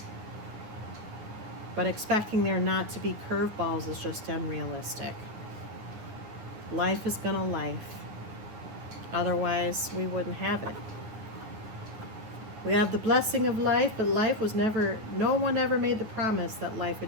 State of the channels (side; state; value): left; late; 9.7 ms